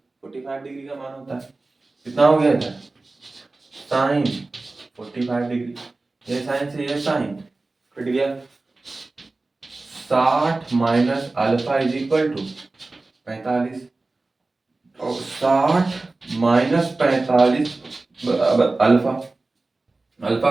45 डिग्री का मान होता है। कितना हो गया था साइन 45 डिग्री, ये साइन से ये साइन कट गया। 60 minus alpha is equal to 45, और 60 माइनस 45 बराबर अल्फा।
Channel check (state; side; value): quieter; left; 3.3 dB